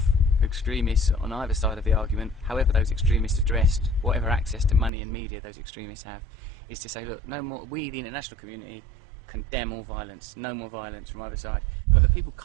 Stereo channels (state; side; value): drops out; left; at 4.9 s